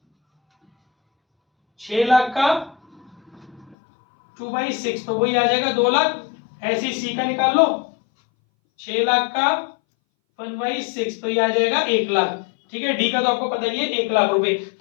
6 लाख का 2/6 तो वही आ जाएगा 2 लाख। ऐसे ही सी का निकाल लो, 6 लाख का 1/6 तो ये आ जाएगा 1 लाख। ठीक है, डी का तो आपको पता ही है 1 लाख रुपए।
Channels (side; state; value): right; drops out; at 3.8 s